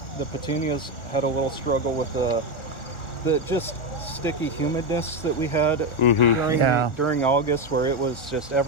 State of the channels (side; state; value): right; late; 1.4 ms